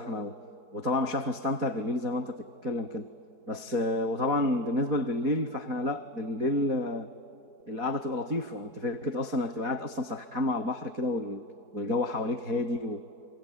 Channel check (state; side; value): late; left; 4.7 ms